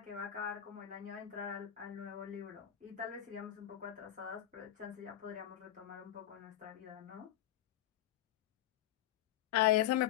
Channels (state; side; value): quieter; right; 12.4 dB